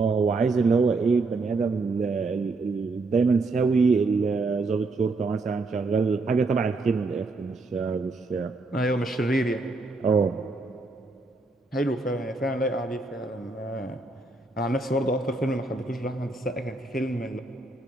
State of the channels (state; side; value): quieter; left; 3.5 dB